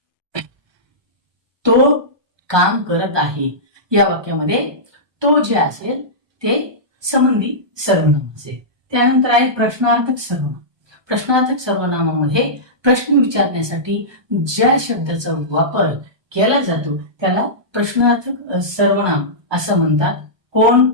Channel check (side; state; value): left; late; 1.2 ms